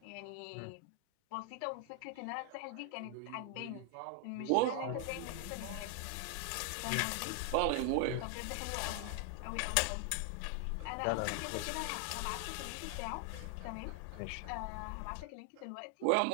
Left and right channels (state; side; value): different; both; correlation 0.00